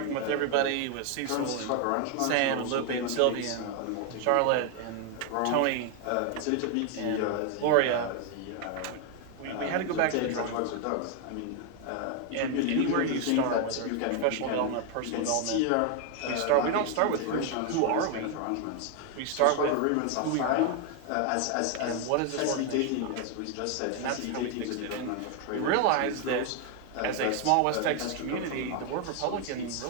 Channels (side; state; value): both; different; correlation 0.01